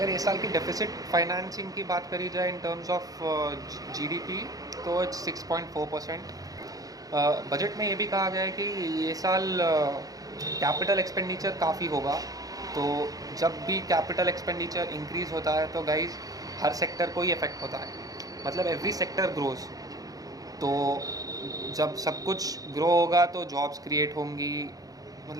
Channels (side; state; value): left; late; 0.17 ms